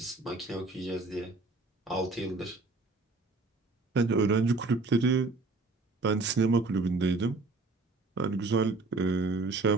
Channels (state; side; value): quieter; left; 3.5 dB